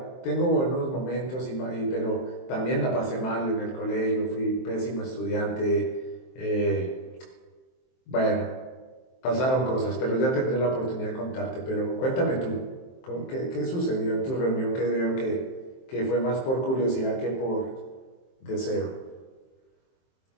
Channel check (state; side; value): late; right; 23 ms